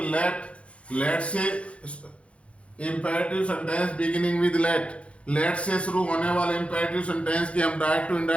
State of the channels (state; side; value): late; right; 0.061 ms